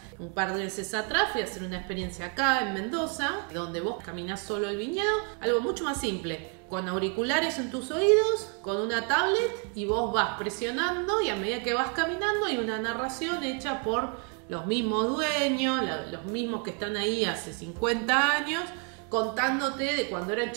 Un par de veces atrás fui a hacer una experiencia acá en Mendoza, donde vos caminás solo el viñedo, algo mucho más simple, con auriculares en tus oídos, con una tablet, y vos vas presionando, y a medida que vas caminando hay una narración hecha por los mismos dueños, los mismos que están ahí hace 50 años, contándote de cuando eran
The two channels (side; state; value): left; quieter; 39.0 dB